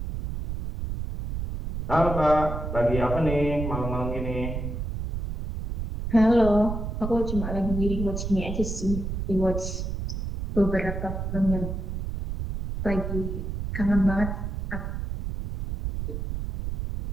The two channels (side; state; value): right; noise; rumble, 4 dB below the sound